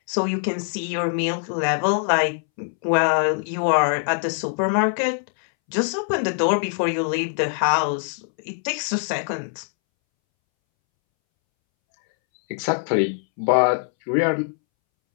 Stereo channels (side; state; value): right; silent; 64 dB below the other